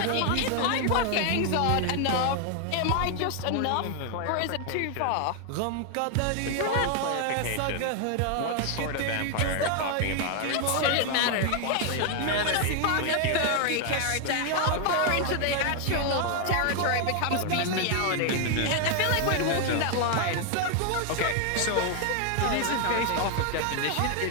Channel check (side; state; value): both; different; correlation 0.00